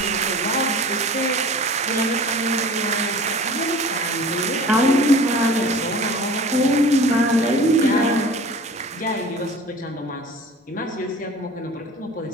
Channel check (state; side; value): normal; both; correlation 0.42